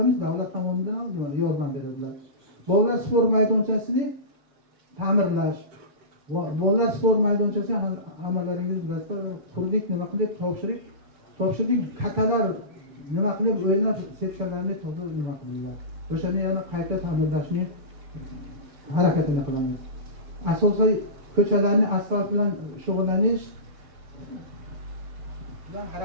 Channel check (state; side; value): late; left; 6.9 ms